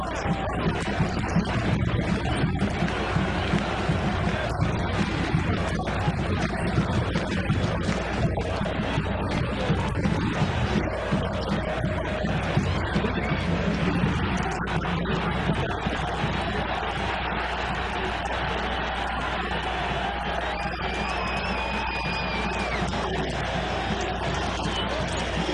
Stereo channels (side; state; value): both; identical; correlation 1.00